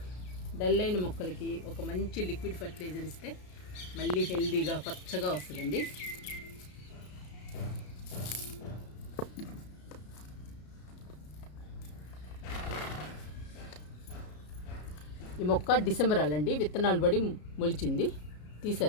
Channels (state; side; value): late; right; 33 ms